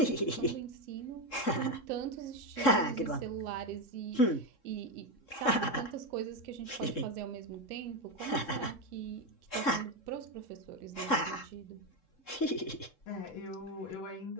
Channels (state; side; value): late; right; 3.7 ms